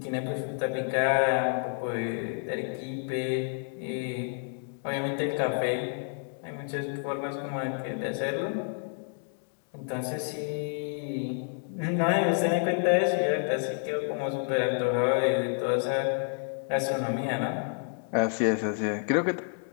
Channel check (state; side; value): silent; right; 56 dB below the other